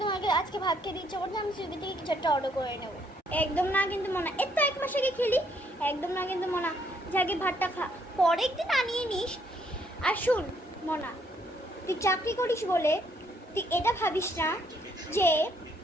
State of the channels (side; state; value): both; normal; correlation 0.69